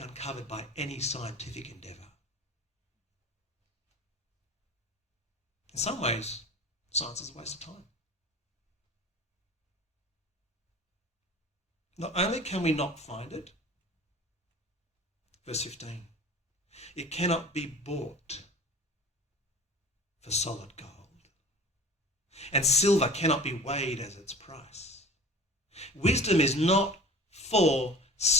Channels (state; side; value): normal; both; correlation 0.40